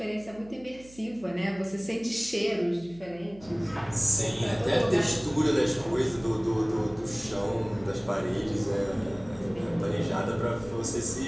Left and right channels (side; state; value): right; noise; hum, 22 dB below the sound